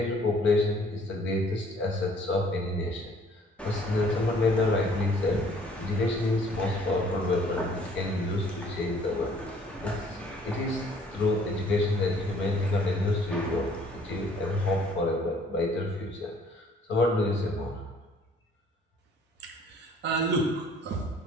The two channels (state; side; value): normal; both; correlation 0.58